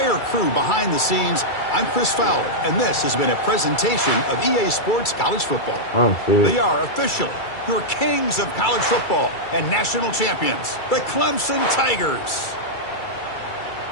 crew behind the scenes, I'm Chris Fowler, and this has been a presentation of EA Sports College Football. They are officially your kings of college football and national champions, the Clemson Tigers.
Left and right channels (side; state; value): right; late; 2.3 ms